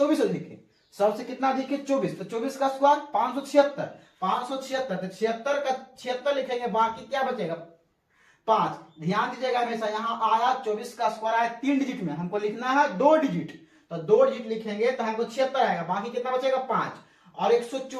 अधिक है, सबसे कितना अधिक है 24, तो 24 का स्क्वायर 576, 576 तो 76 का 76 लिखेंगे, बाकी क्या बचेगा 5। ध्यान दीजिएगा हमेशा, यहाँ आया 24 का स्क्वायर आया 3 डिजिट में, हमको लिखना है 2 डिजिट, तो 2 डिजिट लिखेंगे तो हमको 76 आएगा, बाकी कितना बचेगा 5। और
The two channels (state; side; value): identical; both; correlation 1.00